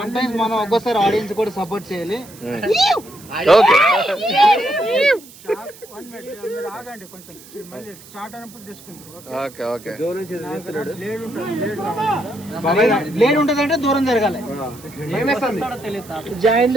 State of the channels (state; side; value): noise; right; hiss, 20 dB below the sound